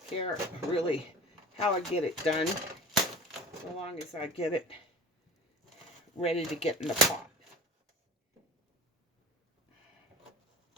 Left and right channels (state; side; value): normal; both; correlation 0.37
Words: care really how I get it done, so long as I get it ready to get in the pot.